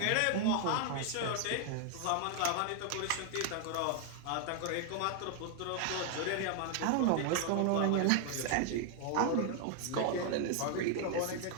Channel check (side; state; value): both; different; correlation 0.00